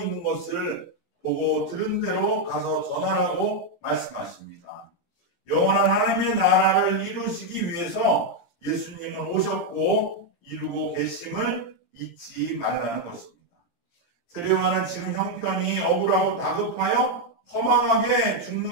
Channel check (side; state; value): right; late; 17 ms